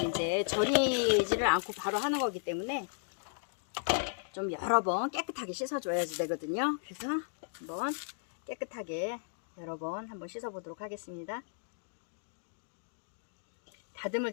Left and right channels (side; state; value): right; silent; digital silence